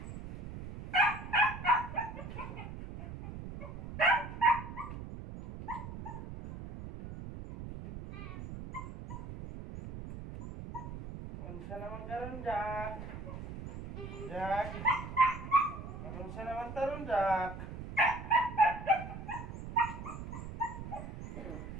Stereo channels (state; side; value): noise; right; rumble, 9 dB below the sound